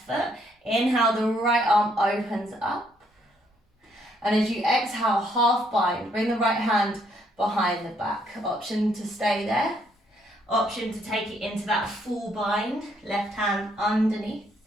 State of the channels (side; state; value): both; normal; correlation 0.70